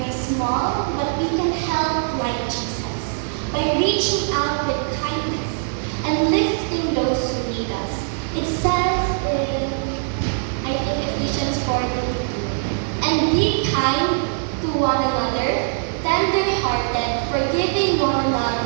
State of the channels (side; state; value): left; silent; 64 dB below the other